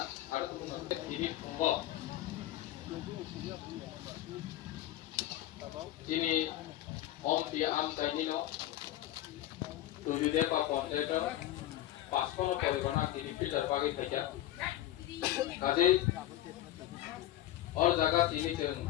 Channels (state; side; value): quieter; right; 13.7 dB